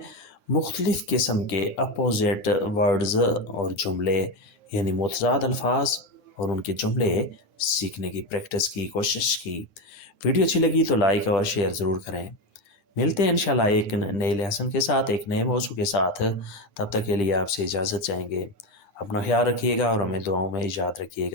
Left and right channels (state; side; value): late; right; 9.6 ms